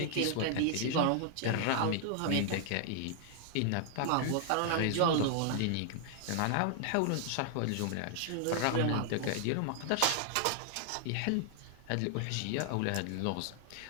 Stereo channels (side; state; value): both; different; correlation -0.01